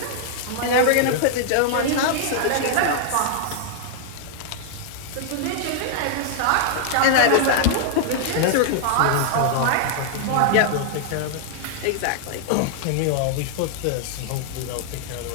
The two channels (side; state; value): both; different; correlation -0.01